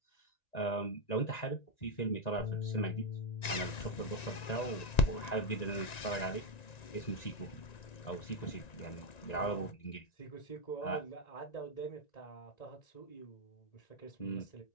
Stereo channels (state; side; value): late; right; 1.9 ms